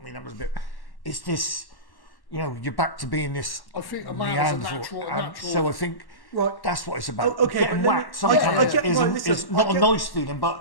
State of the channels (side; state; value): right; late; 1.1 ms